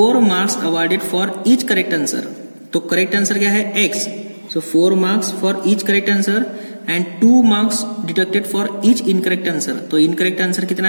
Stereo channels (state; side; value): inverted; both; correlation -1.00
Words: marks awarded for each correct answer. तो करेक्ट आंसर क्या है x, so 4 marks for each correct answer and 2 marks deducted for each incorrect answer. तो इनकरेक्ट आंसर कितना